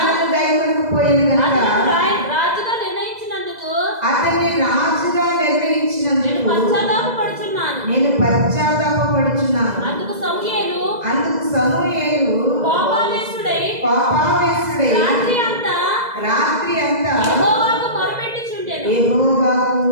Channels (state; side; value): late; left; 2.0 ms